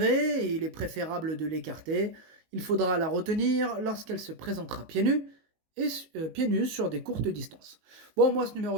et il est préférable de l'écarter. Il faudra la retenir lorsqu'elle se présentera pieds nus sur des courtes distances. Bon, moi ce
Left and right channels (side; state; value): left; late; 19 ms